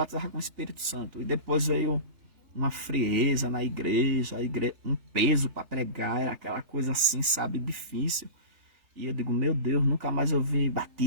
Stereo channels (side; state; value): left; late; 3.4 ms